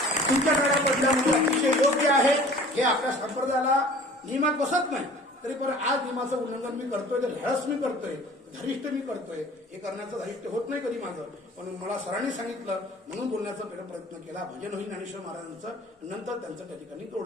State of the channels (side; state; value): both; normal; correlation 0.47